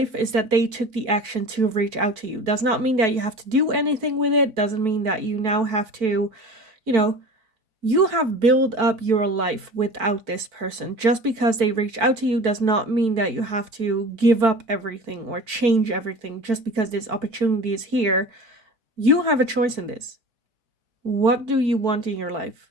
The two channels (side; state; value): left; late; 4.5 ms